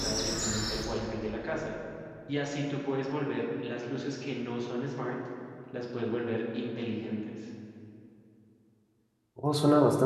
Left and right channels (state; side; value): identical; both; correlation 1.00